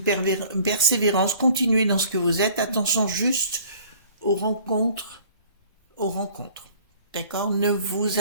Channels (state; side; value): inverted; both; correlation -0.52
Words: persévérance, continuez dans ce que vous êtes, attention juste aux rencontres, d'accord? Ne vous